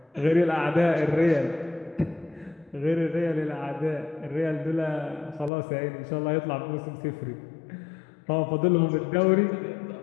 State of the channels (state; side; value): drops out; right; at 5.5 s